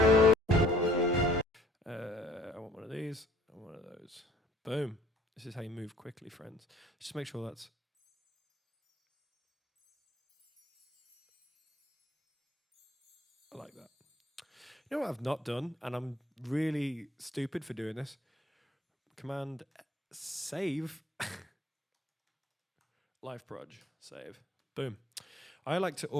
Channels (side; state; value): both; normal; correlation 0.58